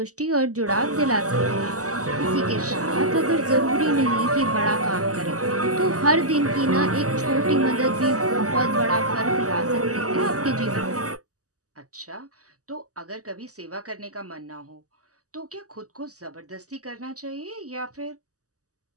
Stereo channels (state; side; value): late; left; 0.66 ms